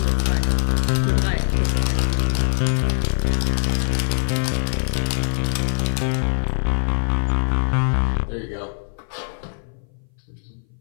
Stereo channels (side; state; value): right; silent; 59 dB below the other